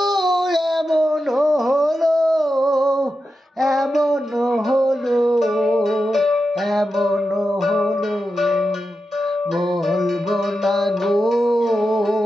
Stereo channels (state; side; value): normal; both; correlation 0.90